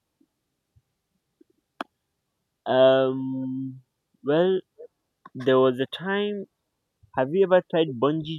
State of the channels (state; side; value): identical; both; correlation 1.00